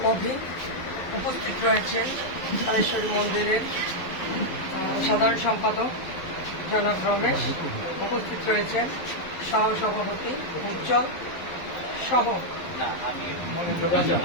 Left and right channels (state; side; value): late; right; 12 ms